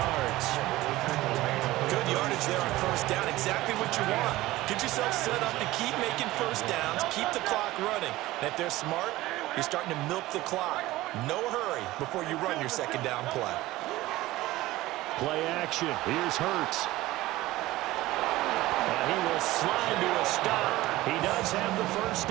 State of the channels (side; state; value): left; quieter; 17.5 dB